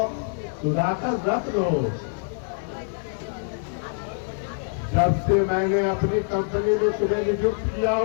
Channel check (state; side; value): silent; right; 62 dB below the other